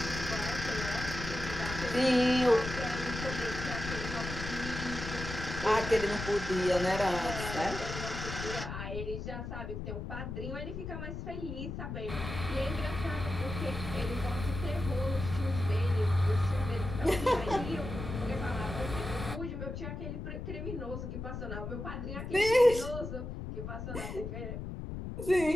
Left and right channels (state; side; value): noise; left; rumble, 6 dB below the sound